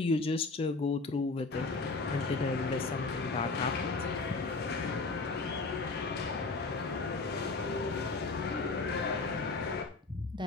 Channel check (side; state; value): right; quieter; 3.7 dB